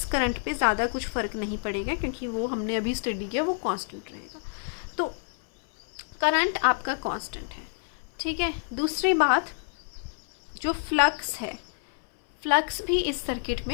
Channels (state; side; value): silent; right; 59 dB below the other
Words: करंट पे ज़्यादा कुछ फ़र्क नहीं पड़ेगा, क्योंकि वो हमने अभी स्टडी किया, वो कांस्टेंट रहेगा। तो करंट आपका कांस्टेंट है, ठीक है। दूसरी बात, जो फ्लक्स है, फ्लक्स भी इस सर्किट